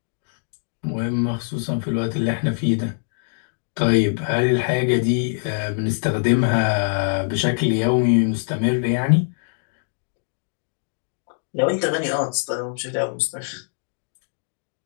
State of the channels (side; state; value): right; silent; digital silence